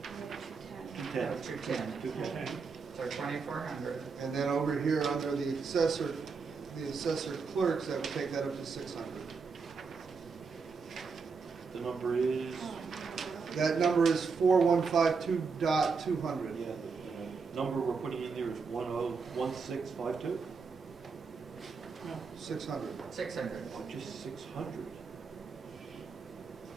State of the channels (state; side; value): quieter; left; 5.1 dB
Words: And 210. 210. Oh, 210. 210. So 2,400. And then over here, under the assessor clerks, that would take that up to 600. The number is, That number is 4152.200. yeah, the number we're putting in there is 101652? no, 600. 600. Oh, just 600.